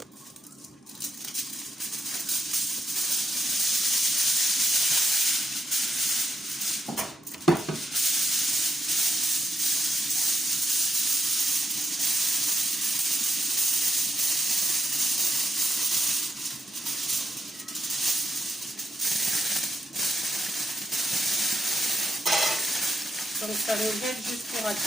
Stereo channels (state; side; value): normal; both; correlation 0.85